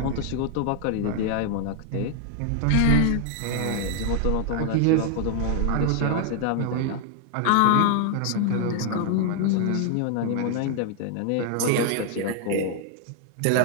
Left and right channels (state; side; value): different; both; correlation 0.00